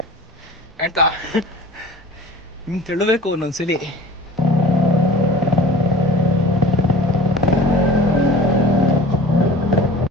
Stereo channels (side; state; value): both; normal; correlation 0.42